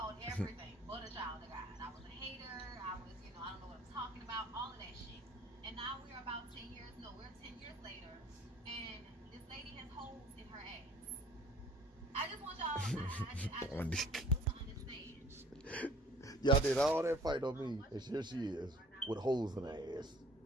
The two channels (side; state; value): both; normal; correlation 0.52